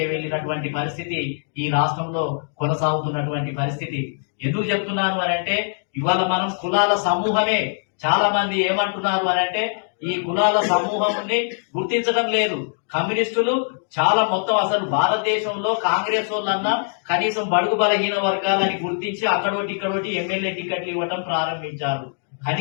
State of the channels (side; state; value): right; silent; digital silence